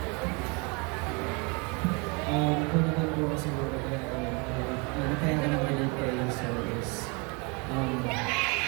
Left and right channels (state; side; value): quieter; left; 30.7 dB